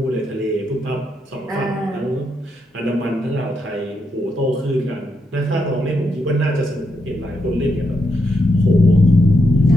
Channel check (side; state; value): both; normal; correlation 0.81